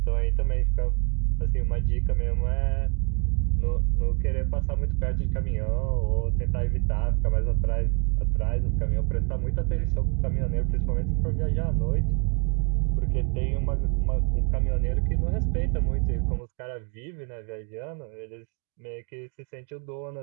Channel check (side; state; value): left; quieter; 34.2 dB